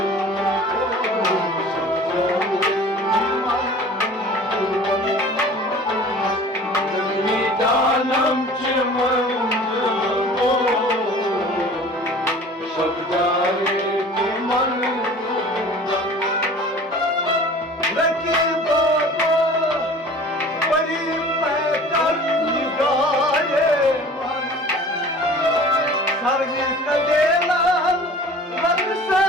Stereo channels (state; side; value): normal; both; correlation 0.44